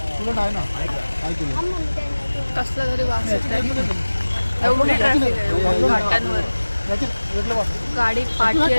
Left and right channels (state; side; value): inverted; both; correlation -1.00